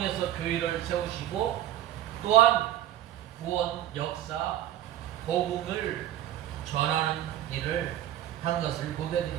교회를 세우시고 또한 구원, 역사, 복음을 전하는 일을 한 것을 보게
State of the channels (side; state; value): left; quieter; 12.6 dB